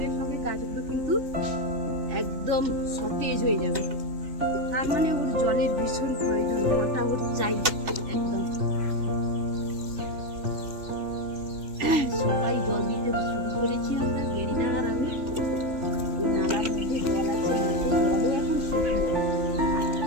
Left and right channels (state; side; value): late; left; 3.4 ms